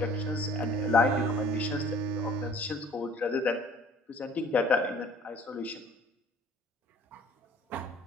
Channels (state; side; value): normal; both; correlation 0.51